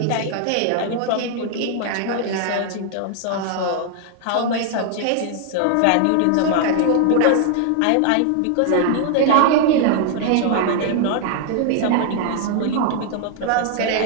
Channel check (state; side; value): different; both; correlation 0.00